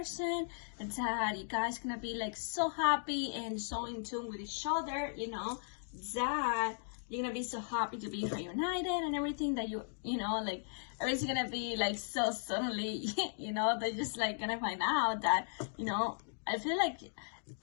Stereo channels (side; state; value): right; silent; digital silence